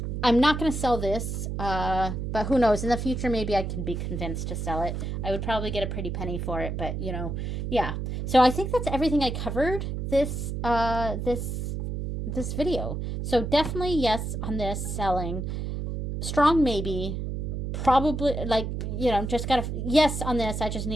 not going to sell this, but who knows? In the future, maybe I can be convinced to sell it. I would probably get a pretty penny for it, but yeah. So I think that's everything I covered this video. So definitely yes on this selling. Strong maybe. Probably just gotta yes on this. I just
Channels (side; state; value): right; noise; hum, 3 dB below the sound